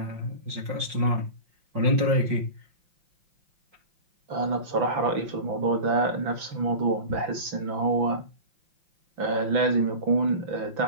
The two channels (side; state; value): left; late; 5.5 ms